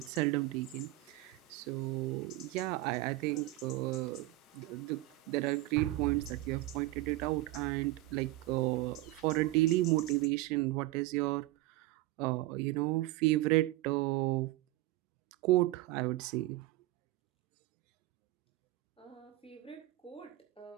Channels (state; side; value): quieter; left; 17.8 dB